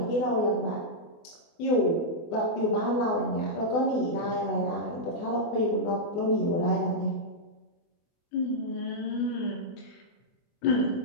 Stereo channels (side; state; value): right; late; 24 ms